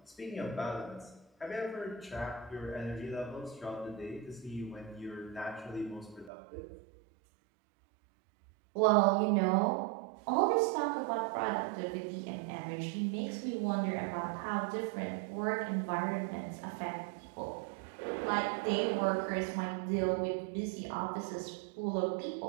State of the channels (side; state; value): left; drops out; at 6.3 s